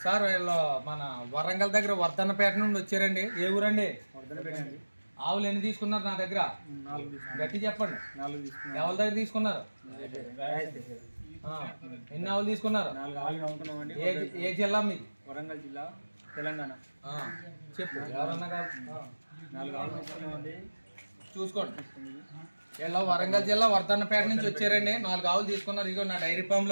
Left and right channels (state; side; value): inverted; both; correlation -1.00